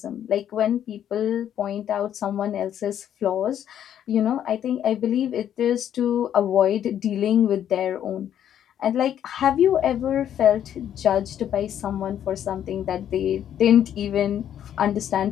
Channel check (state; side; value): quieter; right; 10.1 dB